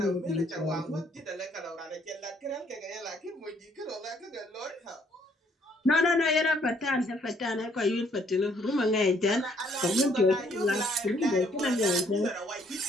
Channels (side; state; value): both; normal; correlation 0.66